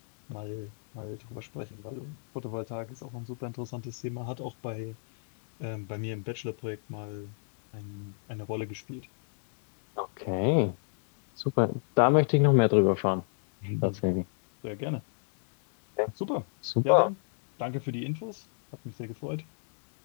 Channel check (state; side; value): silent; right; digital silence